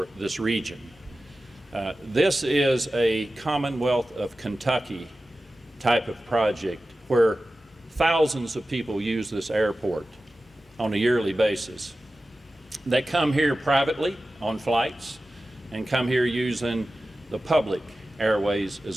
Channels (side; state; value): both; normal; correlation 0.94